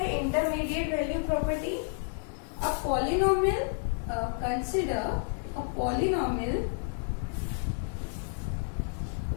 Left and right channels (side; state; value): right; silent; 57 dB below the other